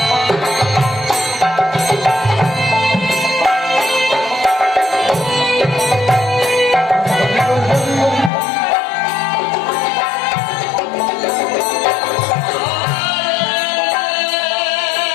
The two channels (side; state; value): right; drops out; at 8.3 s